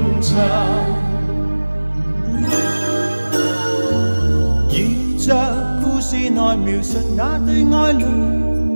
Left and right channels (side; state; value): both; inverted; correlation -1.00